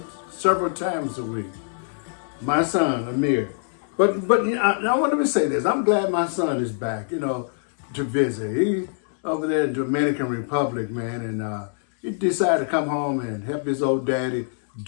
several times a week. My son, Amir. But I want to say this. I'm glad my son is back, to visit. He over there in Dominican Republic, man, and he decided to come home and help his old daddy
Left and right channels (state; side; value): silent; right; digital silence